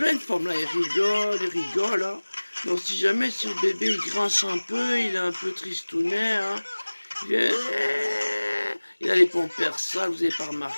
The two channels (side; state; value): both; inverted; correlation -1.00